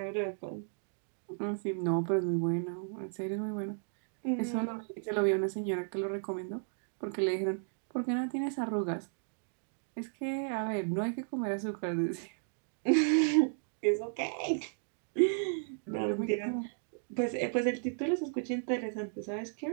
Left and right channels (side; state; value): left; silent; digital silence